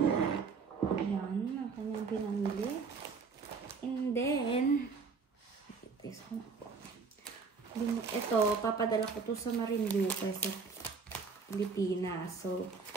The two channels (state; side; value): quieter; left; 5.1 dB